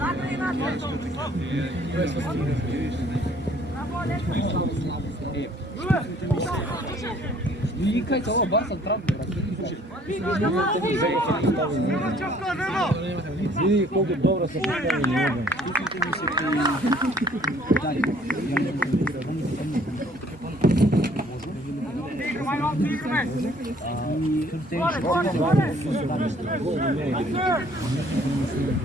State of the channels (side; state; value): both; normal; correlation 0.59